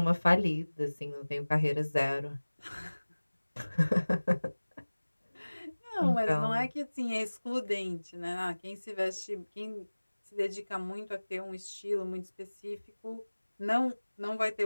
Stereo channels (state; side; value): inverted; both; correlation -1.00